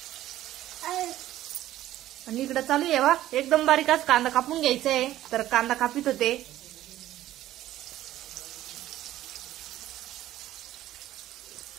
आणि इकडे चालू आहे बा एकदम बारीकच कांदा कापून घ्यायचा आहे. तर कांदा कापित होते.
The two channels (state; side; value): quieter; left; 13.9 dB